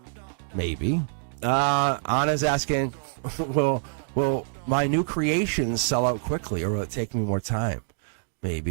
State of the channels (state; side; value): silent; left; digital silence